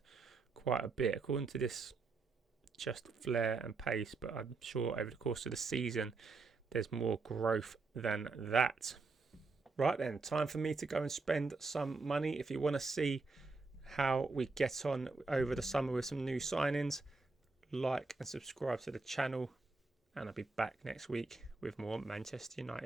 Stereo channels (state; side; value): quieter; left; 3.9 dB